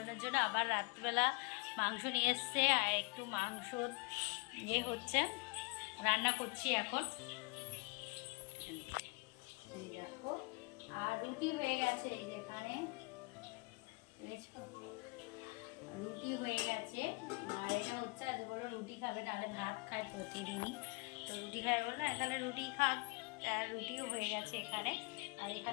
জন্য আবার রাত্রিবেলা মাংস নিয়ে এসছে আর একটু মাংস হচ্ছে, রান্না করছি এখন। এই দেখো আর রুটি হয়ে গেছে, এই যেখানে রুটি হয়ে গেছে। আর এটা হচ্ছে আজ বললো রুটি খাবে, নাহলে ভাত খায় প্রতিদিনই, তো রুটি খায় বললো তাহলে রুটি খাক। আর রুটিও হয়ে গেছে এখানে। আর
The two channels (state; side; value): quieter; right; 29.9 dB